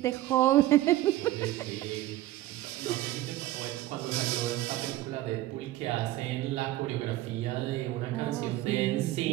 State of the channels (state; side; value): quieter; left; 15.7 dB